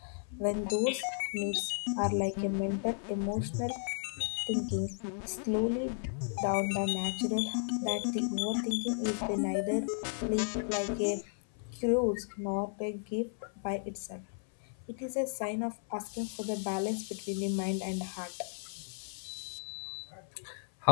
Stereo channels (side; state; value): right; silent; 55 dB below the other